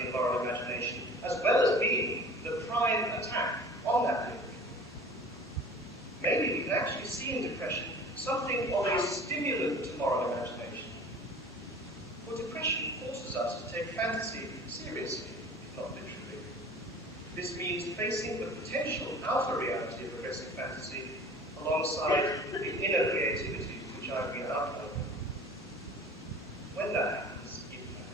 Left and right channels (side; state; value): both; normal; correlation 0.43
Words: and moral imagination, as well as being the prime attack on that link. Maybe we can actually see in depression something of a stimulant to moral imagination. For depression forces us to take fantasy seriously, if not literally. This means facing the potential outer reality of aggressive fantasy alongside the inner creativity which I've been outlining. When that happens, if that